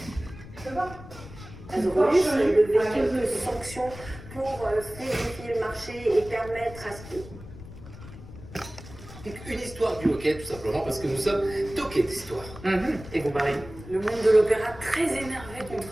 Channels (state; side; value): noise; left; rumble, 15 dB below the sound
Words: Azorus, le véhicule de fonction pour fluidifier le marché et permettre à ce que... Une histoire du hockey, tout simplement, parce que nous sommes toqués d'histoire. Et vous parlez. Le monde de l'opéra très énervé